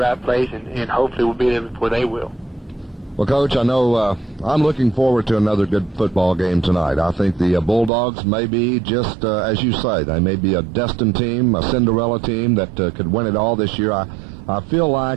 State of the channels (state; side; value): drops out; left; at 7.9 s